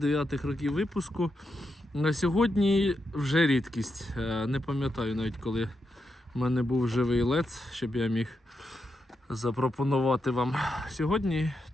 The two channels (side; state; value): both; normal; correlation 0.85